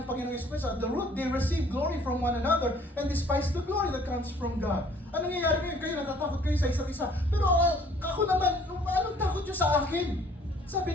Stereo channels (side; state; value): both; normal; correlation 0.57